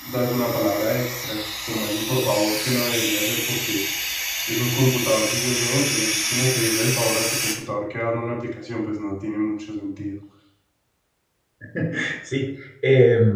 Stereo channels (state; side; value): identical; both; correlation 1.00